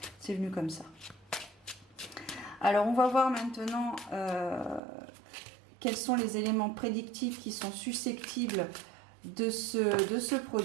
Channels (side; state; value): left; drops out; at 4.8 s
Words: c'est venu comme ça. Alors, on va voir maintenant quels sont les éléments prédictifs qui sont susceptibles de se